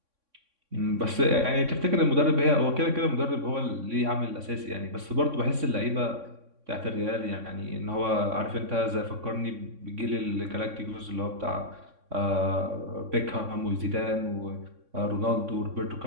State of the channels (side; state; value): left; late; 3.6 ms